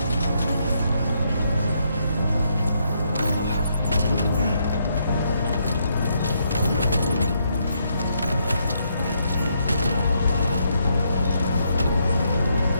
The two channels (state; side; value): inverted; both; correlation -0.75